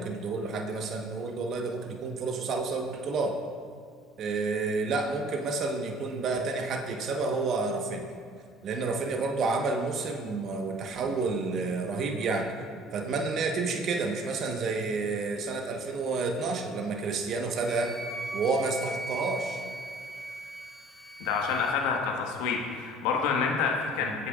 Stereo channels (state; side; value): normal; both; correlation 0.51